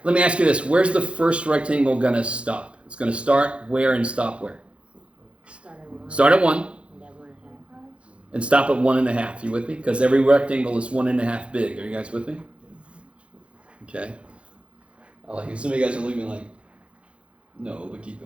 let me ask you this. Where's the first rectangle going to stop? It's going to start where and stop where? Start at 1 and stop at 1.5. You with me? Because every rectangle is 1.5 big. Are you guys with me? Okay. I like it. Some of you guys are looking like, no, but keep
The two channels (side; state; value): left; late; 0.060 ms